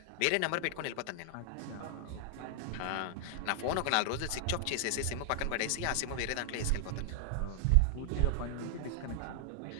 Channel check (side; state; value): both; different; correlation 0.00